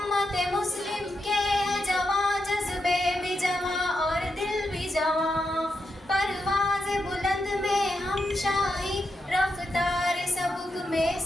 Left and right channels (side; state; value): both; normal; correlation 0.85